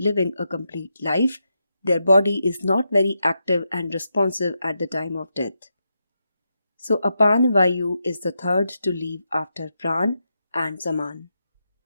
a complete life, their body is not very active and responsive at the time of death. So Apan Vayu is the third to leave after Pran and Saman.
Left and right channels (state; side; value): inverted; both; correlation -0.85